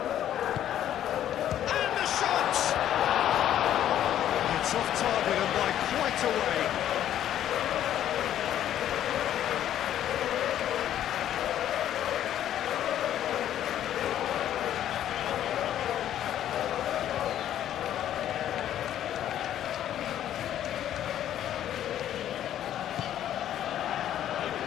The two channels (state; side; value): quieter; right; 11.2 dB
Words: And the shot! It's off target and by quite a way.